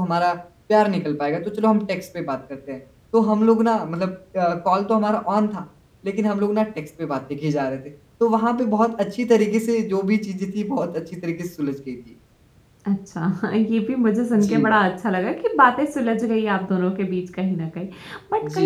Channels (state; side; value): identical; both; correlation 1.00